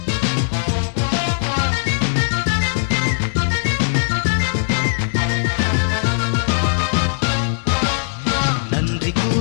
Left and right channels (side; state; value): right; silent; digital silence